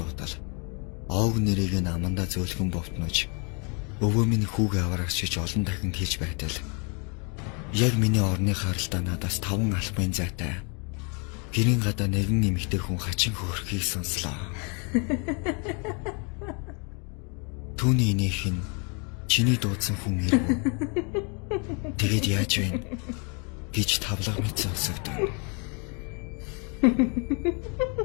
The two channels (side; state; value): right; quieter; 35.2 dB